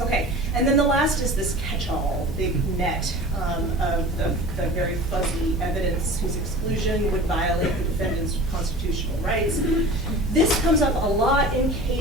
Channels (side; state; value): both; normal; correlation 0.38